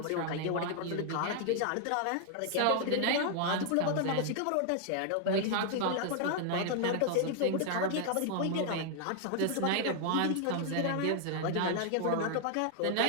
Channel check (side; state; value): both; different; correlation 0.00